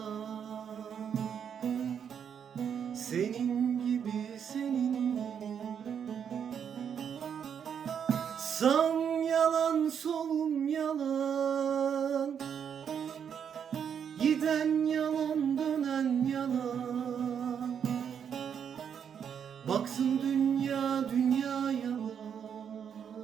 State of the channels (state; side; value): quieter; left; 7.9 dB